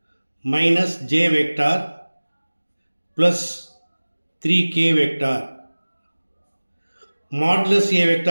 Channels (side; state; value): both; inverted; correlation -1.00